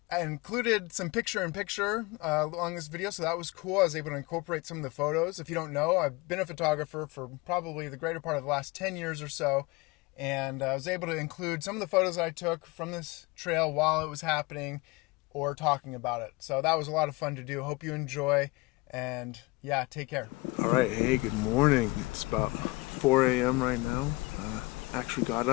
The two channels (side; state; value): right; quieter; 24.0 dB